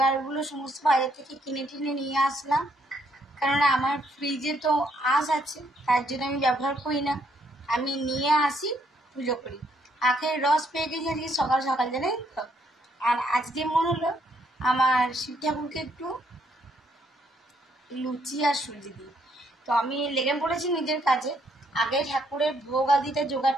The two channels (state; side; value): normal; both; correlation 0.71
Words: সমস্ত বাইরে থেকে কিনে টিনে নিয়ে আসলাম, কারণ আমার ফ্রিজে তো আঁশ আছে, তার জন্য আমি ব্যবহার করি না। আমি নিয়ে আসি, পুজো করি। আখের রস পেয়ে গেছি আজকে সকাল সকাল, জানেন তো। আর আজকে মনে হলো আমার শিব ঠাকুরকে একটু লুচি আর সুজি দিই, তো আমি লেগে পড়েছি নিজের কাজে। আগে ঠাকুরের ভোগ আদিতে